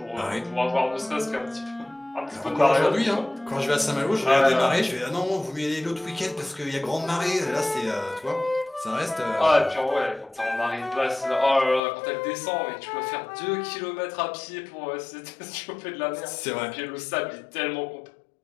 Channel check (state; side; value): drops out; right; at 11.8 s